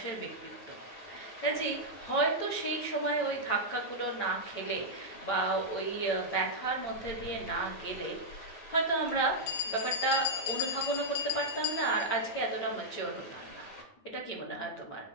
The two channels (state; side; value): late; right; 8.9 ms